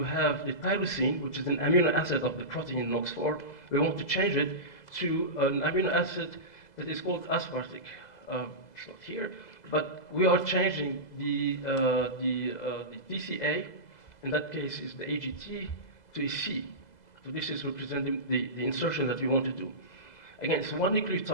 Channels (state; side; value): late; right; 2.0 ms